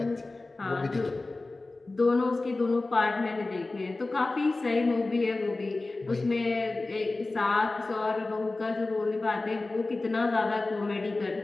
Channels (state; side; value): quieter; right; 3.2 dB